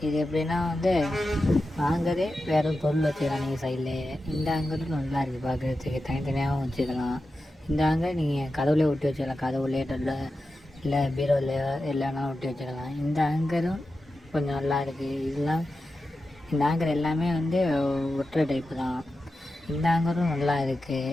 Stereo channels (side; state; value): both; normal; correlation 0.91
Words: இது எப்படின்னா ஆங்கரே வேறு பொருள் வச்சுக்கலாம் நீங்கள் சைட்லேயே. இந்த ஆங்கரும் நல்லா இருக்குது பார்க்குறதுக்கு, தனித்தனியாகவும் வச்சுக்கலாம். இந்த ஆங்கர் நீங்கள் கதவுலேயே ஒட்டி வச்சுக்கலாம், கதவுலேயே இல்லை பீரோலையோ இல்லைனாலும் ஒட்டி வச்சுக்கலாம். இந்த ஆங்கரும் கொஞ்சம் நல்லா இருக்குது. இந்த ஆங்கர் எல்லாமே ஒட்டுற டைப்பு தான். இந்த ஆங்கரும் நல்லா